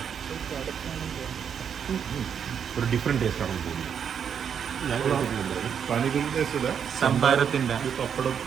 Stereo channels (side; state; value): left; quieter; 7.7 dB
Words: ഒരു ഡിഫറെന്റ് ടേസ്റ്റ് ആണ് തോന്നുന്നത്. പാനിപൂരി ടേസ്റ്റ് ഇല്ല, സംഭാരത്തിന്റെ പപ്പടം,